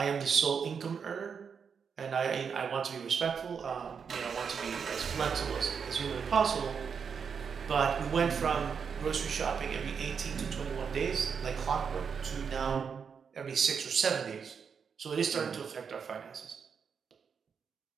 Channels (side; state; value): left; quieter; 6.4 dB